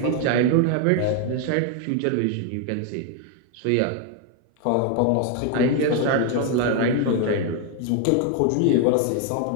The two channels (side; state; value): both; different; correlation 0.01